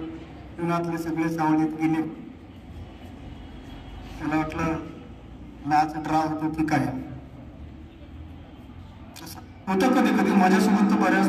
उन्हातले सगळे सावलीत गेले. मला वाटलं मॅच ड्रा होतो की काय. होतं कधी कधी माझ्यासोबत तर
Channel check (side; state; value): both; identical; correlation 1.00